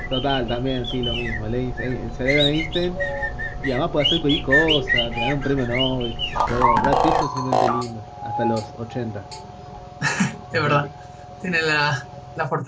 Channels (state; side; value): identical; both; correlation 1.00